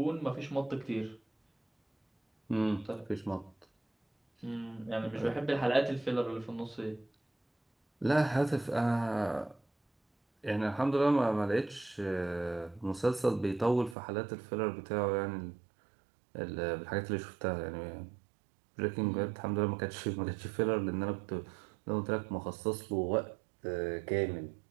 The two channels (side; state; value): left; drops out; at 14.0 s